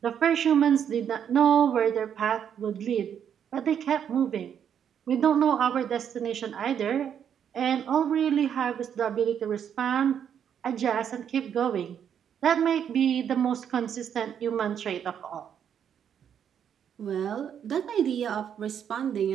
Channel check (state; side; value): quieter; left; 8.6 dB